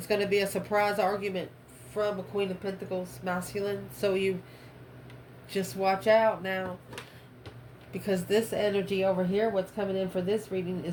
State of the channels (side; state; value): both; identical; correlation 1.00